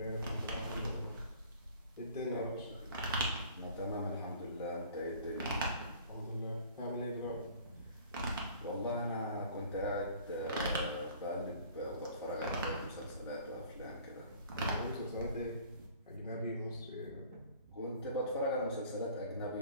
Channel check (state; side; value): inverted; both; correlation -0.50